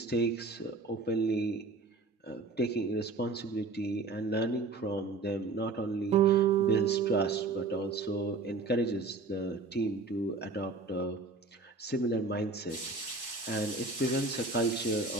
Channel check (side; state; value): left; quieter; 3.7 dB